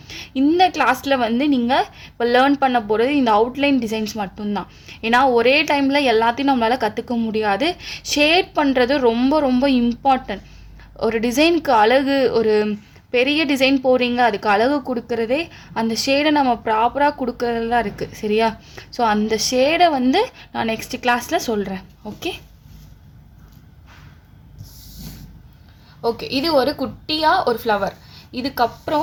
இந்த கிளாஸில் வந்து நீங்கள் இப்போ லேர்ன் பண்ண போகிறது இந்த அவுட்லைன் டிசைன்ஸ் மட்டும்தான். ஏன்னா ஒரே டைமில் எல்லாத்தையும் நம்மளால் கற்றுக்க முடியாது. ஷேட் பண்ணுறது ரொம்ப ரொம்ப இம்பார்ட்டன்ட். ஒரு டிசைனுக்கு அழகு, ஒரு பெரிய டிசைன் போகிறீங்க, அதுக்கு அழகு கொடுக்குறதே அந்த ஷேடை நம்ம ப்ராப்பராக கொடுக்குறது தான் இருக்குது. சரியா? ஸோ அந்த ஷேடை வந்து நான் நெக்ஸ்ட் கிளாஸில் சொல்கிறேன். ஓகே, இது ஒரு குட்டியாக ஒரு ஃப்ளவர்.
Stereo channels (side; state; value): both; identical; correlation 1.00